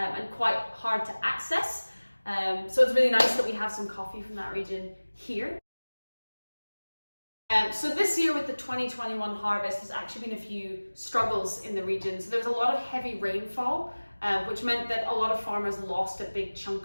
quite hard to access. So it's really nice that we have some coffee from that region here. So this year with the 2021 harvest, there's actually been a few struggles in the region. So there was a lot of heavy rainfall, which meant that a lot of farmers lost a big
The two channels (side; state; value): both; inverted; correlation -1.00